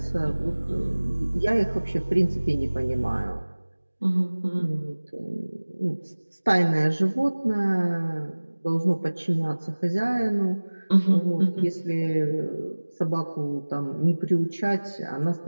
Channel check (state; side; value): inverted; both; correlation -1.00